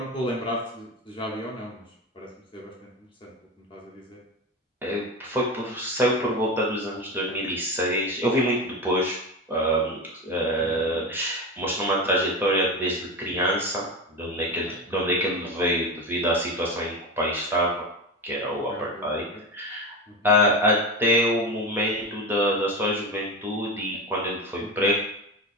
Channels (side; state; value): both; normal; correlation 0.22